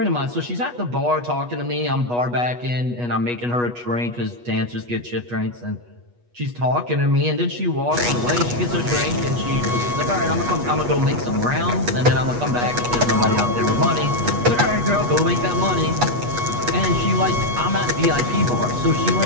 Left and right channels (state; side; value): late; left; 8.3 ms